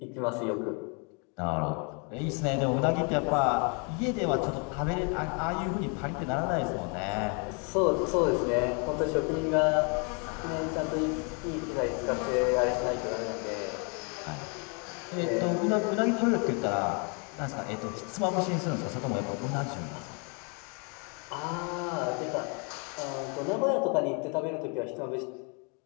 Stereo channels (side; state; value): right; quieter; 35.5 dB